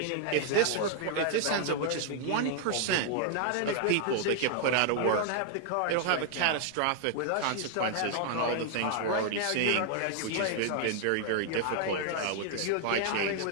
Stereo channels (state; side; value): different; both; correlation 0.00